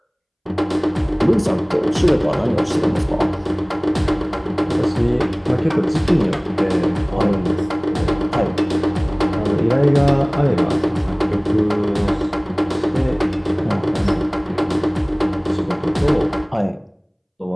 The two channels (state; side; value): identical; both; correlation 1.00